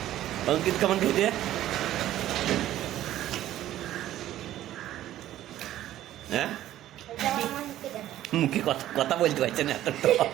অঙ্কিত কেমন খেতে হ্যাঁ মুখে কথা কথা বলতে পারছে না এত তো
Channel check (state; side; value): quieter; left; 13.3 dB